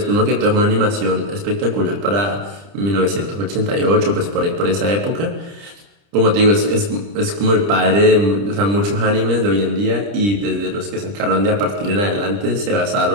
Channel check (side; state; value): left; late; 30 ms